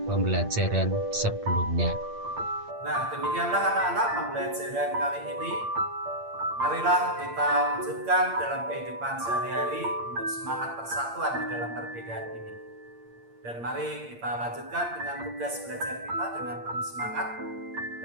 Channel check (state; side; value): late; left; 8.6 ms